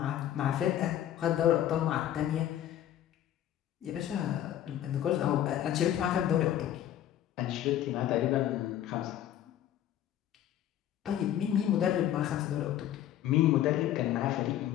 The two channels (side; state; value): right; quieter; 11.6 dB